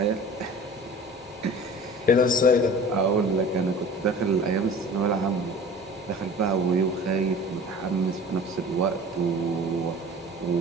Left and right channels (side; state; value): both; normal; correlation 0.41